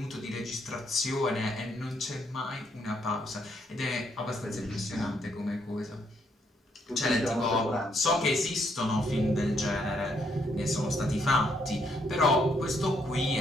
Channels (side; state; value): both; normal; correlation 0.73